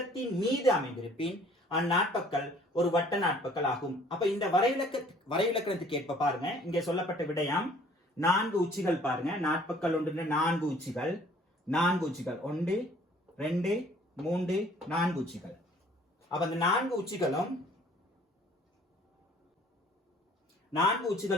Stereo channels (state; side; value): normal; both; correlation 0.55